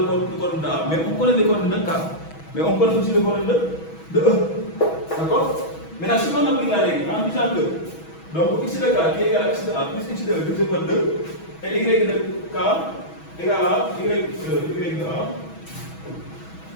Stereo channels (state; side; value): late; right; 6.2 ms